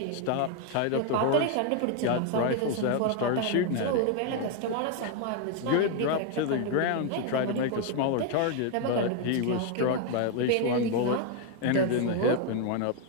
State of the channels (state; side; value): different; both; correlation 0.01